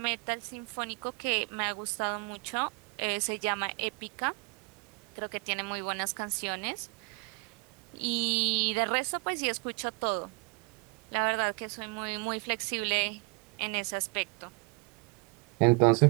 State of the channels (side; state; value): left; quieter; 30.6 dB